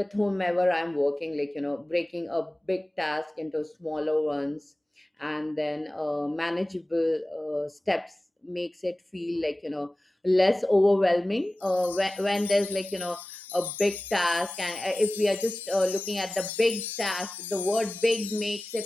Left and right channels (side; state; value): both; normal; correlation 0.96